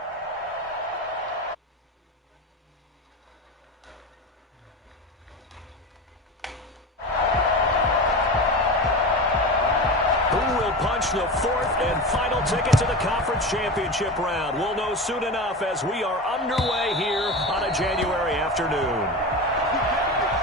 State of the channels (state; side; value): normal; both; correlation 0.26